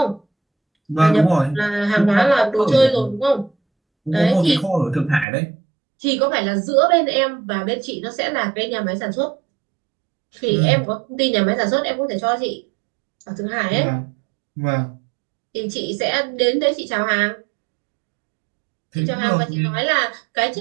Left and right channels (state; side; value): drops out; left; at 5.2 s